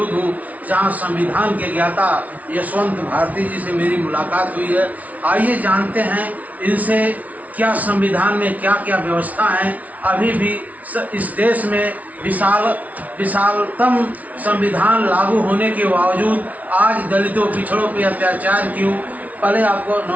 हूं, जहां संविधान के ज्ञाता यशवंत भारती जी से मेरी मुलाकात हुई है। आइए जानते हैं इनसे क्या संविधान में क्या क्या व्यवस्था है। अभी भी इस देश में विशालतम संविधान लागू होने के बावजूद आज दलितों पिछड़ों पर अत्याचार क्यों। पहले आपको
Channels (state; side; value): late; left; 0.071 ms